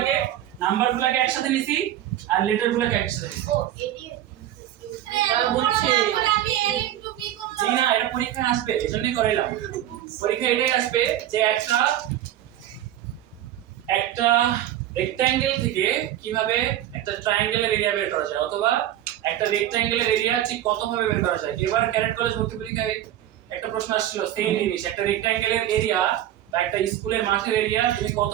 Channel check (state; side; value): quieter; left; 12.4 dB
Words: নাম্বারগুলোকে একসাথে নিছি আর লেটারগুলোকে একসাথে নিছি। ও এডি বুঝছি। আমি এর একটু কি করব? জি না, এটা পরীক্ষায় আসবে, এজন্যই করাইলাম। পরীক্ষায় এটাই আসবে যে একটা রেক্ট্যাঙ্গেল থেকে কিভাবে একটা ট্রায়াঙ্গেলের এরিয়া বের করা যায়, অথবা একটা রেক্ট্যাঙ্গেলের এরিয়া ঠিক কত ভাবে বের করা যায়। এবার ক্যাডেট কলেজ ভর্তি পরীক্ষায় একটা প্রশ্ন আসছিল, সেম জিনিস, একটা রেক্ট্যাঙ্গেলের এরিয়া বা একটা স্কুলের মাঠের এরিয়া তুমি কত